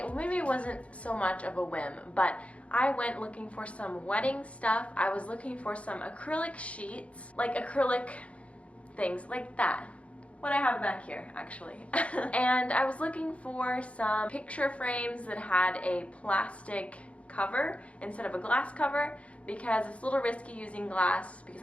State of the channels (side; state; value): right; late; 0.063 ms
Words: Maybe it wasn't so much of a whim, but I went looking for some wedding stuff. I was looking for some acrylic sheets, like acrylic things like that. What I have back here, actually. And I was looking for some picture frames that had a plastic cover instead of a glass cover because it's a little risky using glass because